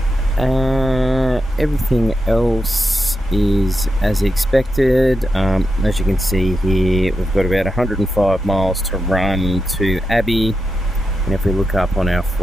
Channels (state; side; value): normal; both; correlation 0.87